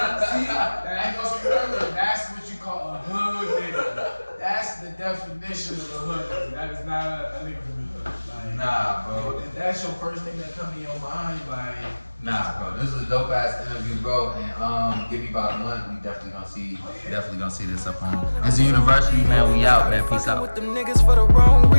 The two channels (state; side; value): inverted; both; correlation -1.00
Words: See, that goes further. That's what you call a hood nigga. That's the definition of a hood nigga. That is not a nigga from the hood. Like, Nah, bro. if that's your first thing that come to your mind, like, Nah, bro. This is a dope ass interview, bro. And give me about a month. We definitely gonna see this up on. It's a university, man. We out, man. Peace out. With them niggas for the wrong